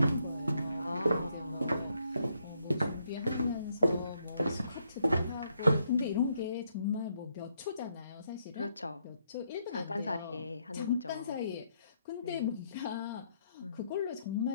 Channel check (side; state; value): both; inverted; correlation -0.75